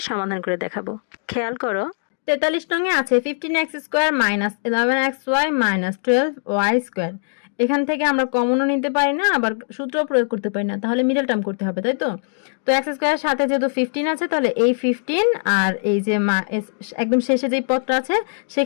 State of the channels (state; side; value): silent; right; digital silence